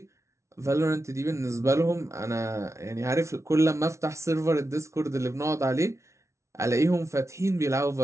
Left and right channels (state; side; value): late; left; 0.14 ms